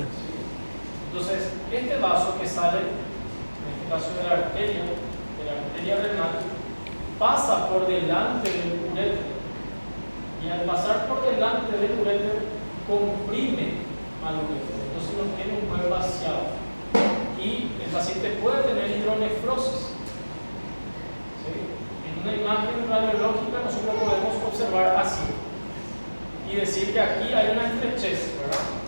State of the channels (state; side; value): inverted; both; correlation -1.00